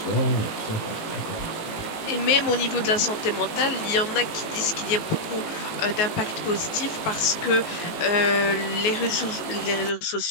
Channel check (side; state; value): right; late; 18 ms